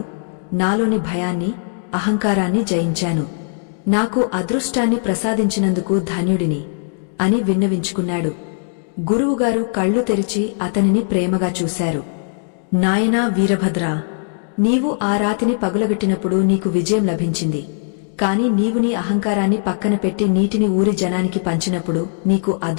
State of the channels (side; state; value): right; silent; digital silence